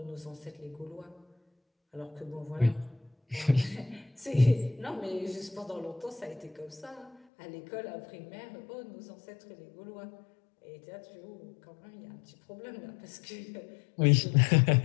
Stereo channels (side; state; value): right; drops out; at 7.2 s